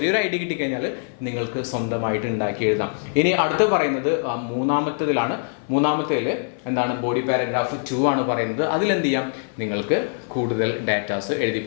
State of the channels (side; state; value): right; silent; 59 dB below the other